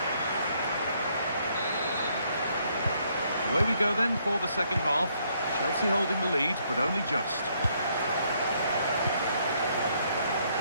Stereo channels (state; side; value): inverted; both; correlation -0.70